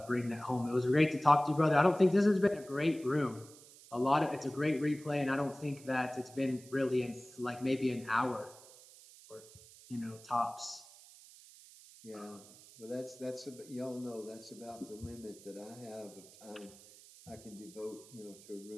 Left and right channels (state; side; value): noise; right; hiss, 21 dB below the sound